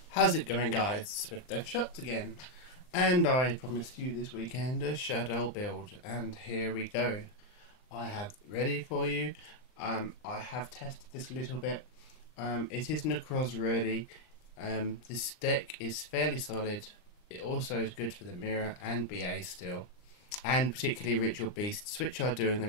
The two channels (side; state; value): right; late; 39 ms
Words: How's it going, guys? Swiftdeathshotz again, and I promised you this weekend a Shaddoll build, and here we go. I have ready for you. I have tested this a little bit. It is Nekroz ready. This deck is fairly solid. It also is good for the mirror and BA still, and particularly ritual beasts, which are doing the